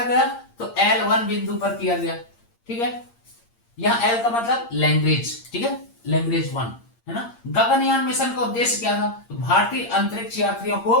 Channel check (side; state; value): right; late; 8.7 ms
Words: गया? तो L1 बिंदु पर किया गया। ठीक है, यहां L का मतलब लैंग्वेज। ठीक है, लैंग्वेज 1 है ना। गगनयान मिशन का उद्देश्य क्या था? तो भारतीय अंतरिक्ष यात्रियों को